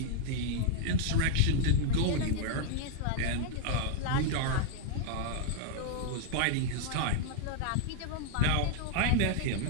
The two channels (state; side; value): different; both; correlation 0.00